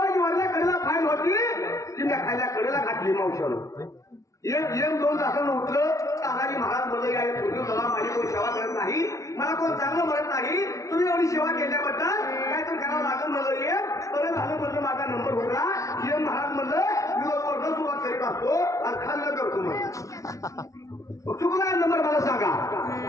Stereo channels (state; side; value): late; right; 0.15 ms